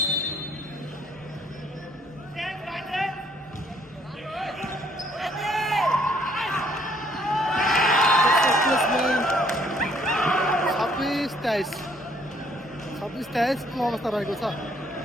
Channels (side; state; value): both; normal; correlation 0.64